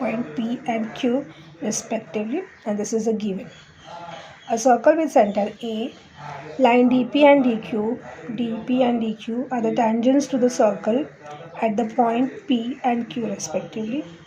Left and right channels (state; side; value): identical; both; correlation 1.00